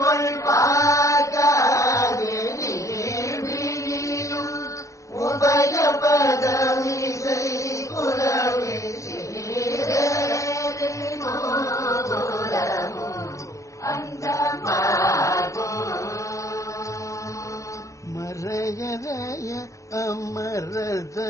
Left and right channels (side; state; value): right; late; 0.15 ms